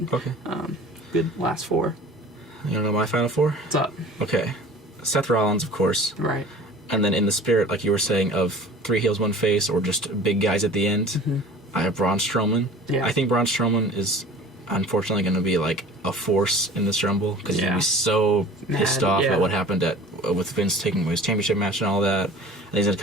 good last 4. You don't know my final 4? What's up? Okay. Seth Rollins, of course. Right. And then in the spirit, like you were saying, of 3 heels, 1 face, or just big guys at the end, I have Braun Strowman. Yeah. I think Braun Strowman is unfortunately going to be a force in this Rumble because he's going to be so pissed off at what happened with Vince taking his championship match and all that. And he's going to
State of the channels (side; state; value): both; normal; correlation 0.43